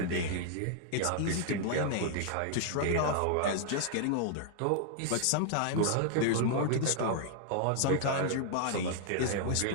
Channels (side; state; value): both; different; correlation -0.01